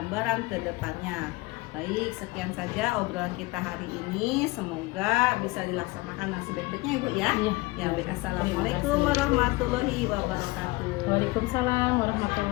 ke depannya. Baik, sekian saja obrolan kita hari ini. Semoga bisa dilaksanakan dengan sebaik-baiknya Ibu ya. Ya, baik. Assalamualaikum warahmatullahi wabarakatuh. Waalaikumsalam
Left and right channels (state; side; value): quieter; right; 22.6 dB